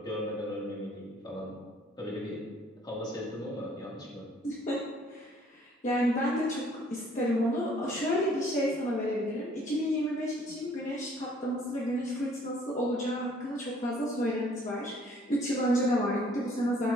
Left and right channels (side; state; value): both; normal; correlation 0.59